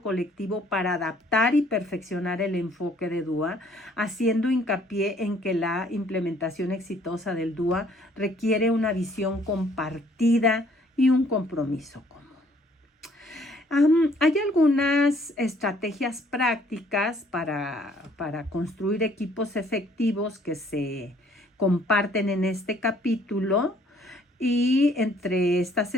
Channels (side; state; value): both; normal; correlation 0.61